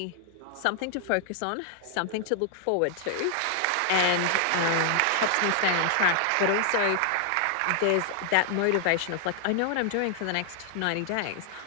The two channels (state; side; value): different; both; correlation 0.00